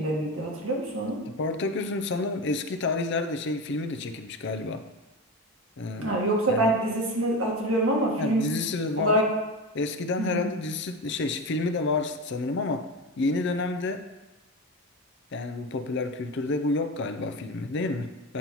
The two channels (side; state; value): both; normal; correlation 0.23